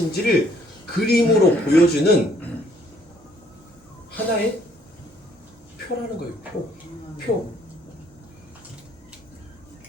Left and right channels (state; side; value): normal; both; correlation 0.63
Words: 그림으로 보여주는 하나의 표라는 거예요. 표.